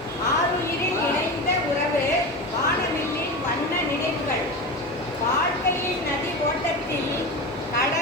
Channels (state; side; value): normal; both; correlation 0.25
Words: ஆருயிரில் இணைந்த உறவு வானவில்லின் வண்ண நினைவுகள். வாழ்க்கையின் நதி ஓட்டத்தில்